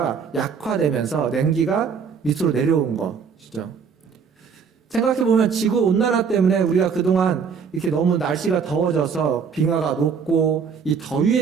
약화되면서 냉기가 밑으로 내려온 것이죠. 생각해보면 지구온난화 때문에 우리가 그동안 이렇게 너무 날씨가 더워져서 빙하가 녹고 이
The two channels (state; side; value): quieter; left; 6.2 dB